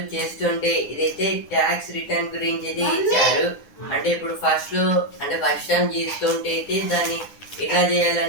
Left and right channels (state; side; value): late; right; 9.7 ms